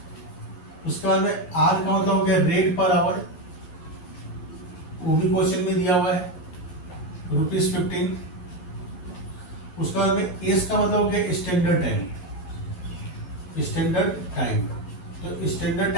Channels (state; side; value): late; right; 11 ms